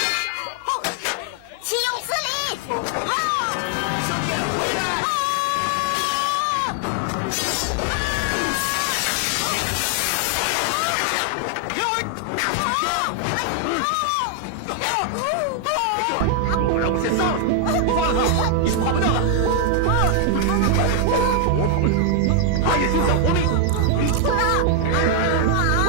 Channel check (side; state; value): both; different; correlation 0.00